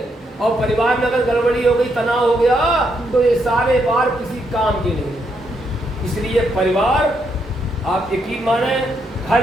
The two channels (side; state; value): both; normal; correlation 0.77